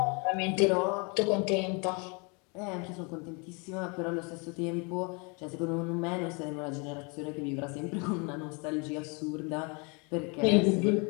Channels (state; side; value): quieter; right; 32.3 dB